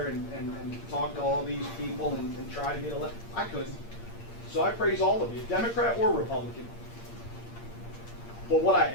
and talk to all these people and try to get elected. I couldn't. So I praise all of you, Democrat or Republican. But what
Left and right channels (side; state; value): right; late; 8.7 ms